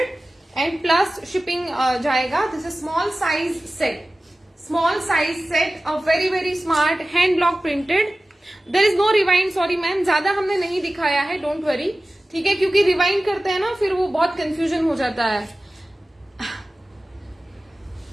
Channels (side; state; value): both; normal; correlation 0.96